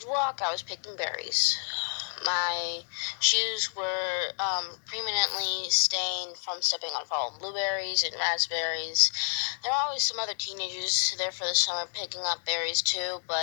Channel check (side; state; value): right; silent; digital silence